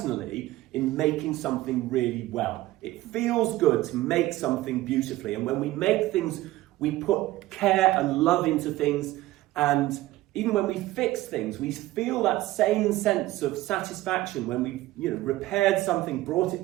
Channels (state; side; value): quieter; left; 17.0 dB